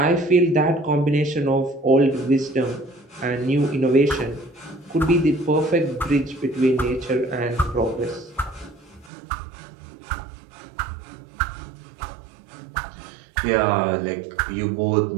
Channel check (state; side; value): drops out; left; at 9.1 s